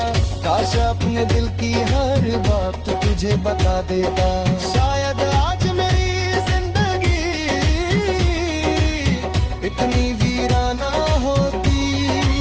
काश अपने दिल की हर बात तुझे बता देता। शायद आज मेरी जिंदगी इतनी वीराना होती,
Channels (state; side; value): identical; both; correlation 1.00